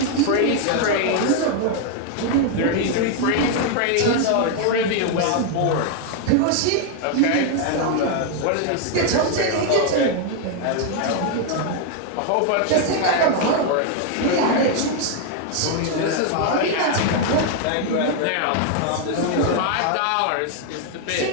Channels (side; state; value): both; different; correlation 0.00